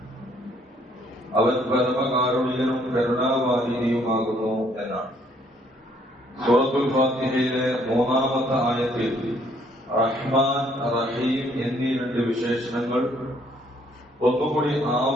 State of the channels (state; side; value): normal; both; correlation 0.65